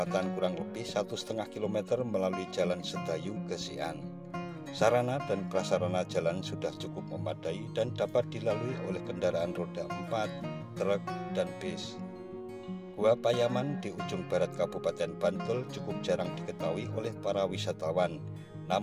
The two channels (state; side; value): identical; both; correlation 1.00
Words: kurang lebih 1,5 km melalui Jalan Sedayu ke Sian. Sarana dan prasarana jalan sudah cukup memadai dan dapat dilalui oleh kendaraan roda 4, truk, dan bis. Gua Payaman di ujung barat Kabupaten Bantul cukup jarang diketahui oleh para wisatawan.